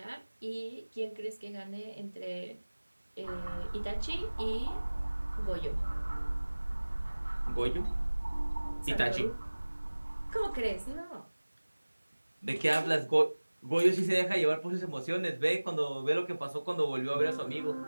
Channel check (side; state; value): both; inverted; correlation -1.00